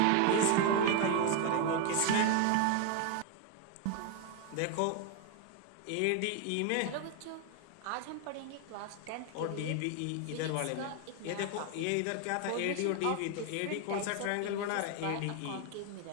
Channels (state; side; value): different; both; correlation 0.01